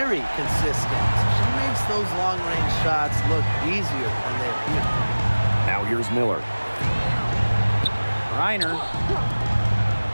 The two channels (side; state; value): both; inverted; correlation -1.00